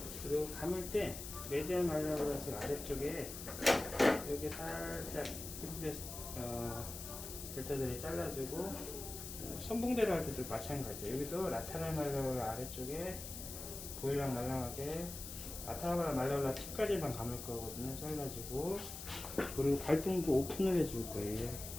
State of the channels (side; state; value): left; noise; hiss, 9 dB below the sound